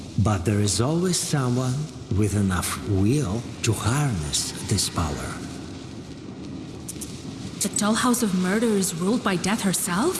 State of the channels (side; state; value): both; identical; correlation 1.00